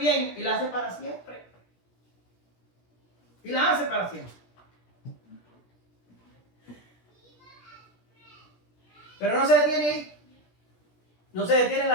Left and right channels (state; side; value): late; right; 17 ms